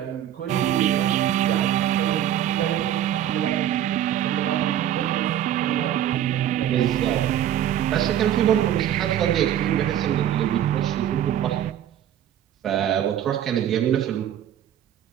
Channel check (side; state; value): left; quieter; 11.1 dB